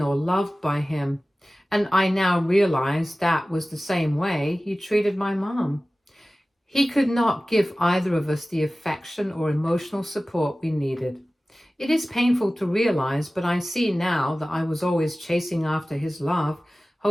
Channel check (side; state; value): both; normal; correlation 0.97